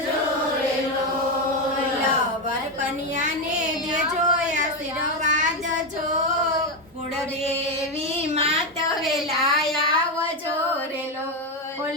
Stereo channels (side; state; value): both; normal; correlation 0.10